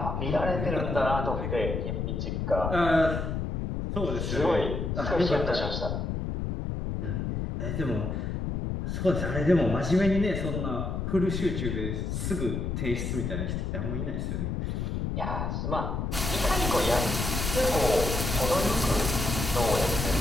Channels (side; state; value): left; noise; rumble, 2 dB below the sound